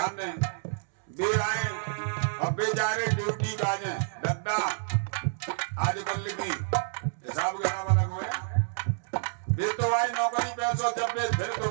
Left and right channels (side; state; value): left; silent; digital silence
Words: दें, वे आए और बेचारे ड्यूटी का जाए दद्दा आजकल की हिसाब किताब अलग हुए। वे तो आए नौकरी पैसों जब वे फिर